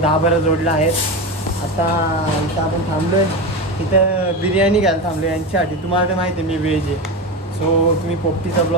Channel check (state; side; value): normal; both; correlation 0.20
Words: 10-12 जोडल्या आहेत. आता इथं आपण थांबलो आहे. इथं बिर्याणी घ्यायला थांबलो आहे यांच्यासाठी. तुम्हाला तर माहिती आहे मी व्हेज आहे. सो तुम्ही पोपटीचा